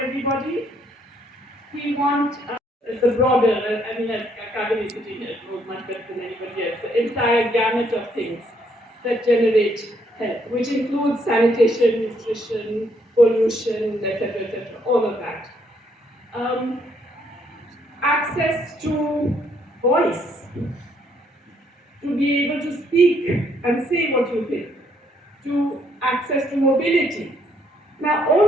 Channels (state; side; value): normal; both; correlation 0.70